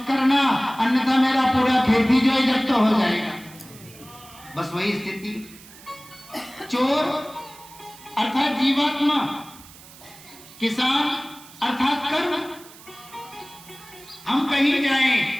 करना, अन्यथा मेरा पूरा खेती जो है जब्त हो जाएगा। बस वही स्थिति। चोर अर्थात जीवात्मा, किसान अर्थात कर्म। हम कहीं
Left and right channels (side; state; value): right; noise; hiss, 20 dB below the sound